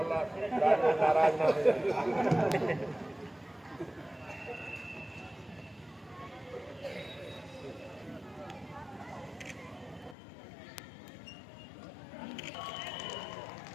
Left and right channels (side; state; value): right; drops out; at 10.2 s